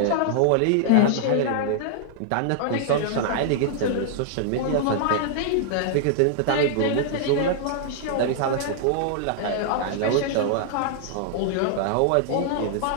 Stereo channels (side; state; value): both; different; correlation -0.01